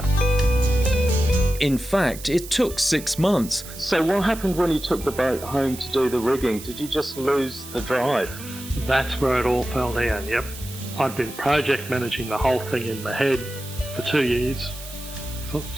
In fact, it took 6 months. So what happened when you took the boat home to do the rigging? Did you just lose the drive? That's where it all fell down, yep. I'd been project managing the whole thing in my head for 2 years,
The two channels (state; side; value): noise; right; hiss, 14 dB below the sound